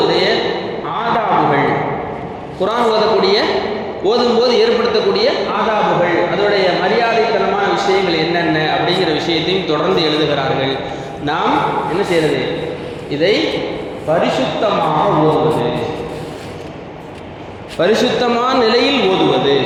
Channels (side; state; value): both; identical; correlation 1.00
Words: ஆதாபுகள், குர்ஆன் ஓதும்போது ஏற்படுத்தக்கூடிய ஆதாபுகள், அதனுடைய மரியாதைத்தனமான விஷயங்கள் என்னென்ன அப்படிங்கிற விஷயத்தையும் தொடர்ந்து எழுதுகிறார்கள். நாம் என்ன செய்யறது? இதை பரிசுத்தமாக ஓதுவது, பரிசுத்தமான நிலையில் ஓதுவது.